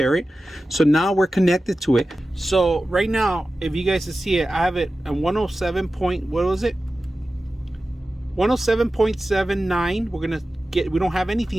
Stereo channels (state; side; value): normal; both; correlation 0.94